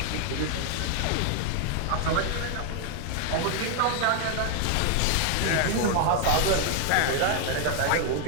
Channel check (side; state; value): both; different; correlation 0.00